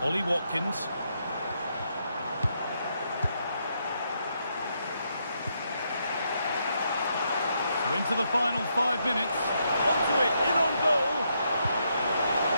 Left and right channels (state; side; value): inverted; both; correlation -0.78